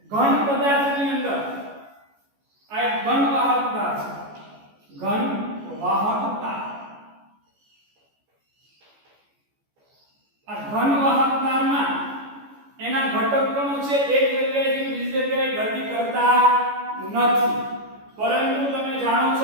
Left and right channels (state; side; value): late; left; 14 ms